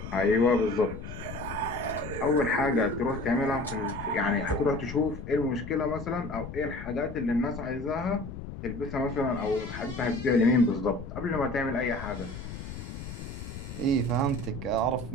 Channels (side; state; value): left; noise; rumble, 10 dB below the sound